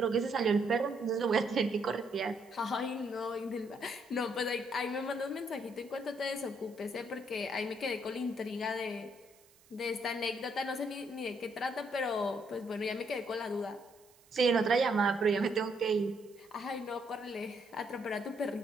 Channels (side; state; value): right; noise; hiss, 28 dB below the sound